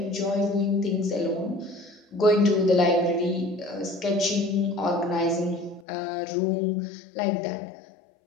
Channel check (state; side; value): drops out; right; at 5.9 s